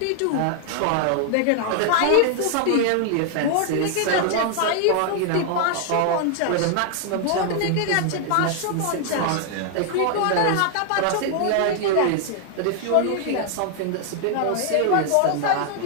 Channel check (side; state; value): both; different; correlation 0.00